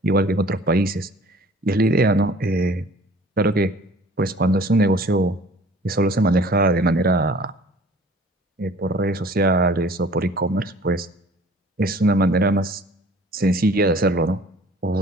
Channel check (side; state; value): both; normal; correlation 0.50